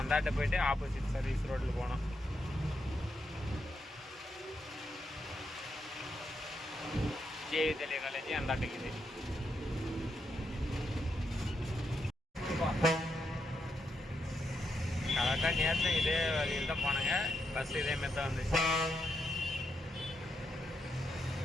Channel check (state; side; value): normal; both; correlation 0.82